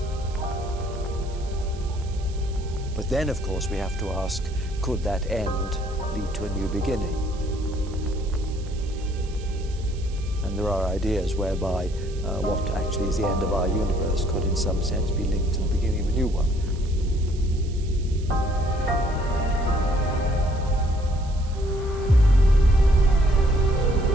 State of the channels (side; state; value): right; noise; hiss, 22 dB below the sound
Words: But then, of course, we have to ask, could that end lead to a new beginning? And there are ideas whereby what actually is the end of our universe could in some sense be linked to the beginning of a new one.